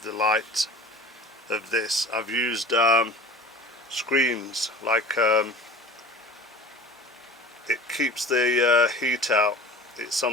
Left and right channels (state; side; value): normal; both; correlation 0.39